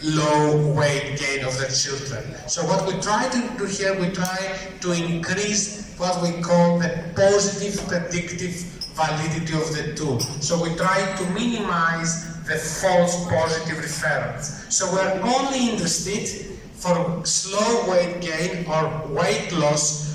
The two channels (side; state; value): both; identical; correlation 1.00